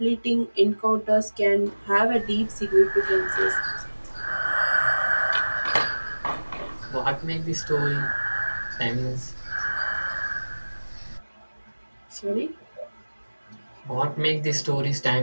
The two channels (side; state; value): both; inverted; correlation -1.00